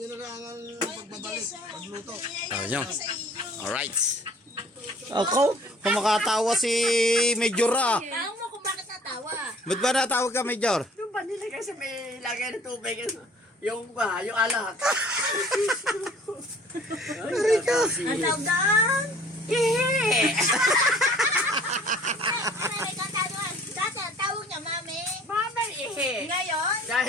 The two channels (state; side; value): normal; both; correlation 0.52